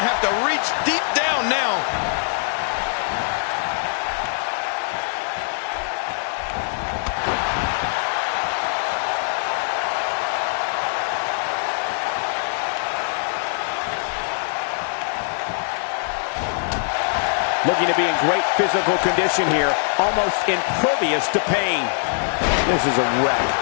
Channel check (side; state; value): right; silent; 59 dB below the other